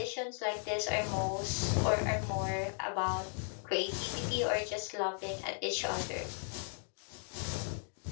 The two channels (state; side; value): silent; right; 54 dB below the other